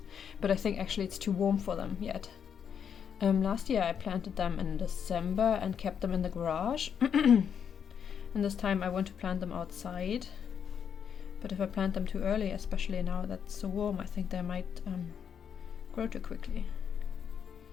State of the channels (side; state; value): right; quieter; 7.7 dB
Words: but I think actually it's too warm for them yet. Last year I planted them in December and kept them in the garage. And this time I want to plant them outside, but if I plant them too early, especially now that's so warm, I think they might grow too quickly.